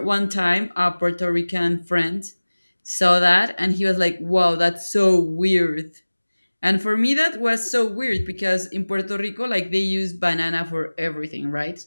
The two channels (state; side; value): inverted; both; correlation -1.00